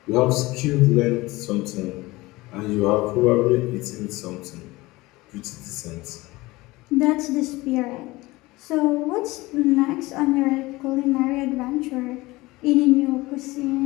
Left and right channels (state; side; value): quieter; right; 20.6 dB